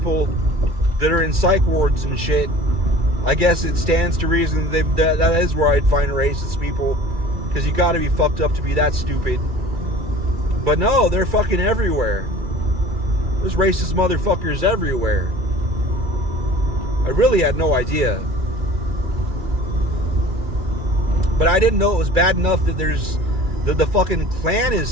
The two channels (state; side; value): late; left; 2.3 ms